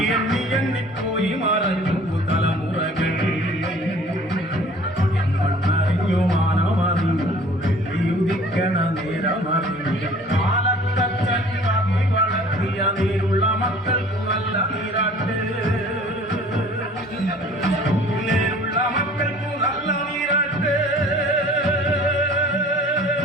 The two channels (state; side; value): normal; both; correlation 0.50